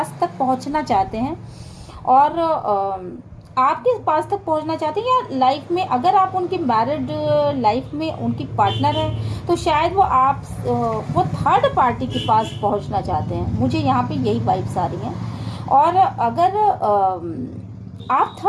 तक पहुंचना चाहते हैं, और आपके पास तक पहुंचना चाहते हैं, या लाइफ में अगर आप उनकी मैरिड लाइफ में उनकी पार्टनर है तो शायद वो थर्ड पार्टी के पास पहुंचना चाहते हैं। मुझे यहाँ पे यही वाइब्स आ रही हैं। और अगर आप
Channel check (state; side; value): identical; both; correlation 1.00